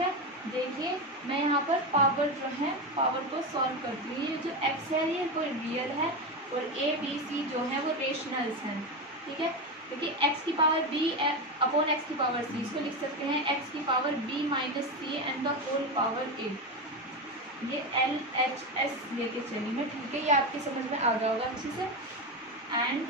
देखिए मैं यहाँ पर पावर जो है पावर को सॉल्व करती हूँ। ये जो x है ये कोई रियल है और a b c जो है वो रेशनल्स हैं, ठीक है। देखिए x की पावर b अपॉन x की पावर c, इसको लिख सकते हैं x की power b minus c and the whole power a। ये LHS लेके चलेंगे, ठीक है। ये आपकी समझ में आ गया होगा अच्छे से। एंड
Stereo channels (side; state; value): both; normal; correlation 0.16